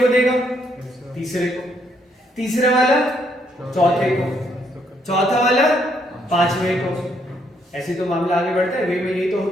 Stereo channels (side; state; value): both; normal; correlation 0.72